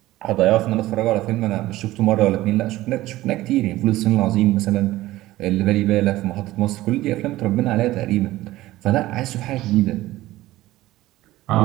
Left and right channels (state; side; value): quieter; left; 16.6 dB